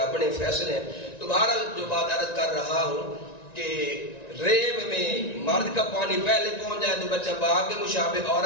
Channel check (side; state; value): right; late; 1.9 ms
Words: فیصلے ہیں. تو بہرحال جو بات عرض کر رہا ہوں کہ ریب میں مرد کا پانی پہلے پہنچ جائے تو بچہ باپ کے مشابہ,